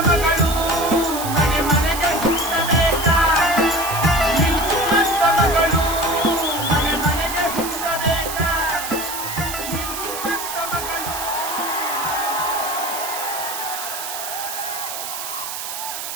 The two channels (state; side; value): noise; right; hiss, 6 dB below the sound